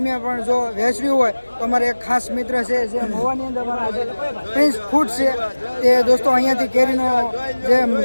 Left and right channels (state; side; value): inverted; both; correlation -1.00